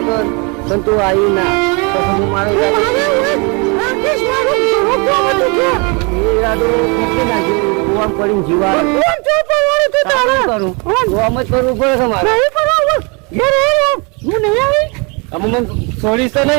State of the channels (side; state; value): left; quieter; 31.6 dB